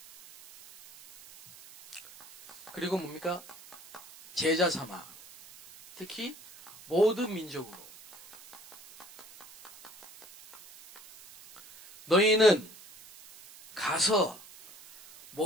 그리고 뭡니까? 제자 삼아, 특히 모든 민족으로 너희는 가서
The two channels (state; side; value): noise; right; hiss, 20 dB below the sound